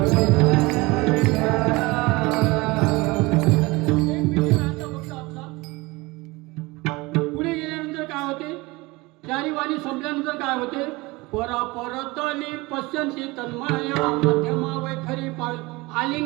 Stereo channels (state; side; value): quieter; left; 23.0 dB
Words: पुढे गेल्यानंतर काय होते, चारी वाणी संपल्यानंतर काय होते, परा परतली पश्यंती तन्मया मध्यमा वैखरी पाळ